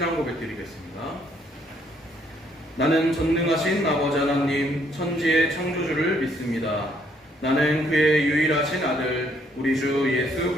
고백 드리겠습니다. 나는 전능하신 아버지 하나님 천지의 창조주를 믿습니다. 나는 그의 유일하신 아들 우리 주 예수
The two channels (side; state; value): both; normal; correlation 0.68